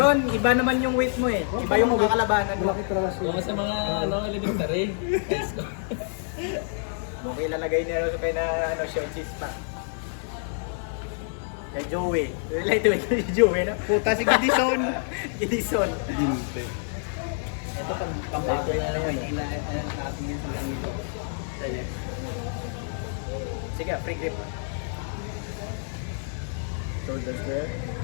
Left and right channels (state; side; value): silent; right; 60 dB below the other